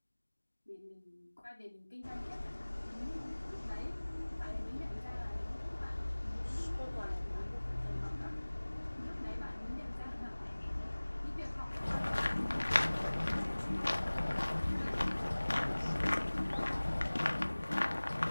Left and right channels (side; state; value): both; inverted; correlation -1.00